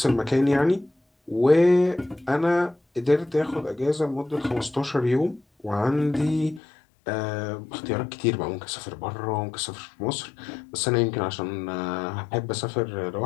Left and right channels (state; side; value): drops out; right; at 6.6 s